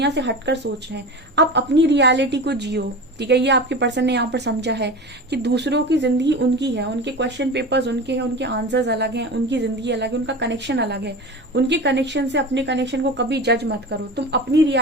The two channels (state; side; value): normal; both; correlation 0.30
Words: से हटकर सोच रहे हैं, आप अपनी रियलिटी को जियो, ठीक है। ये आपके पर्सन ने यहाँ पर समझा है कि दूसरों की जिंदगी उनकी है, उनके क्वेश्चन पेपर्स उनके हैं, उनके आंसर्स अलग हैं, उनकी जिंदगी अलग है, उनका कनेक्शन अलग है। उनके कनेक्शन से अपने कनेक्शन को कभी जज मत करो, तुम अपनी